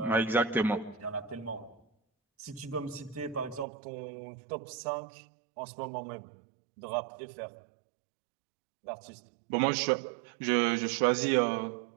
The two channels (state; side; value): drops out; left; at 3.7 s